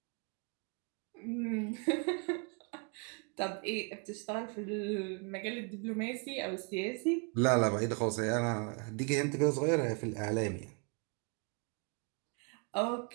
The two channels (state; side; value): quieter; left; 36.0 dB